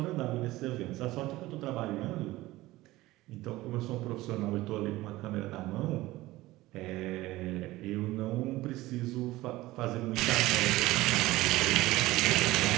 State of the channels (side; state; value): left; quieter; 18.0 dB